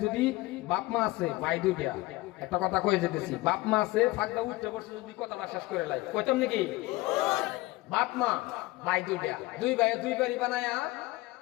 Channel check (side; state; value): right; quieter; 19.8 dB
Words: যদি বাপ মা আছে ভাই দুইটা, একটা কথা কয়ে যেতেছি, বাপ মা আছে ফাঁকটা উঠতে বসে যদি কথাটা শেষ করে লাই কইতাম নাকি, বাপ মা ভাই দুইটা, দুই ভাই দুই বাড়ি বানায়া